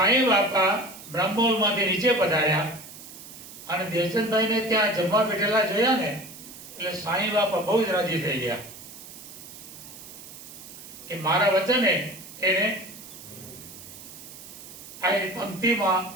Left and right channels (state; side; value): noise; right; hiss, 15 dB below the sound